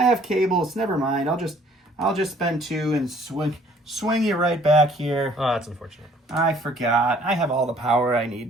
have cables. Never mind. I'll just spend 2 and swing you right back here. Oh, that's unfortunate. I forgot. I have all the power I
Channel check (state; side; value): normal; both; correlation 0.58